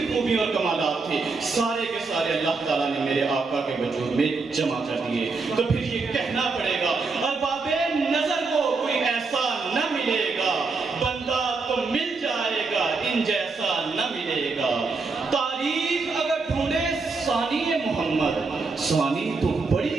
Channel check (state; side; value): quieter; left; 4.2 dB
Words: خوبی اور کمالات تھے سارے کے سارے اللہ تعالیٰ نے میرے آقا کے وجود میں جمع کر دیے۔ تو پھر یہ کہنا پڑے گا، ارباب نظر کو کوئی ایسا نہ ملے گا، بندہ تو مل جائے گا ان جیسا نہ ملے گا۔ تاریخ اگر ڈھونڈے ثانی محمد، ثانی تو